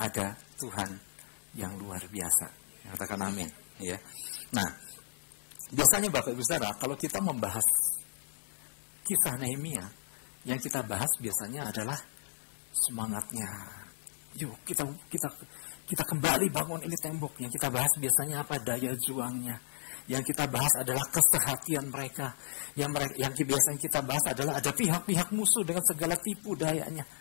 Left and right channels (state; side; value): silent; right; digital silence